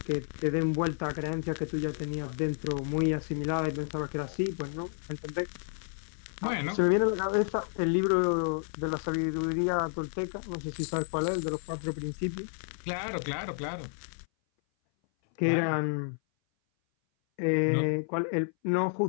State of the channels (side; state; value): right; silent; 57 dB below the other